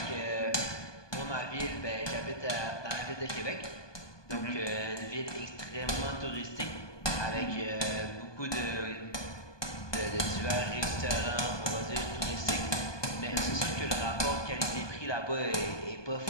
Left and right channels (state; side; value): late; right; 1.2 ms